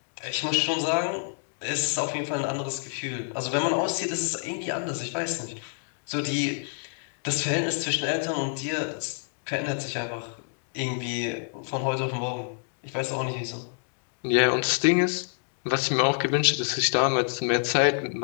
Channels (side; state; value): right; silent; 60 dB below the other